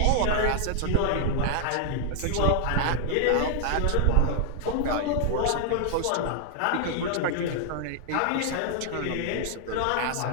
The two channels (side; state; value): both; different; correlation 0.00